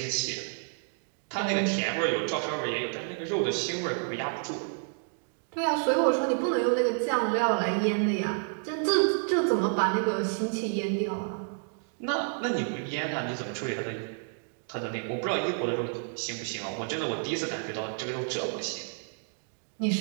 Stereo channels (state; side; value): silent; left; 58 dB below the other